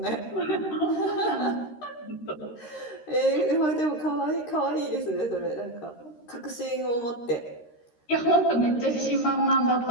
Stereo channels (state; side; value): late; right; 13 ms